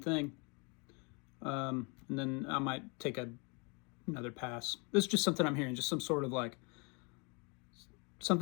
And then I might take another pass. This is just something I'm hearing, just some sort of like,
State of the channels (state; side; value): quieter; right; 31.7 dB